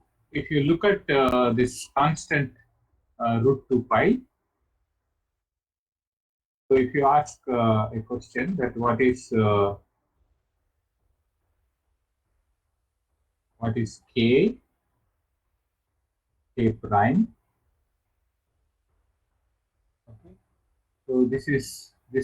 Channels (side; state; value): both; identical; correlation 1.00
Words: if you look at this constant root 2 pi, so if you ask a question that what is k prime, okay, so this